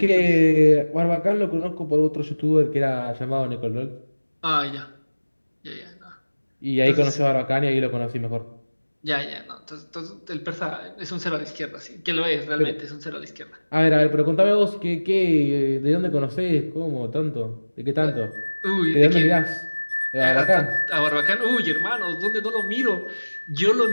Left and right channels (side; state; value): both; inverted; correlation -1.00